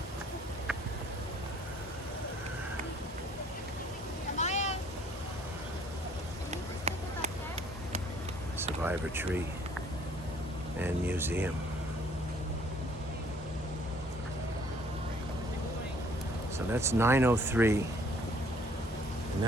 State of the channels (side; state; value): both; normal; correlation 0.60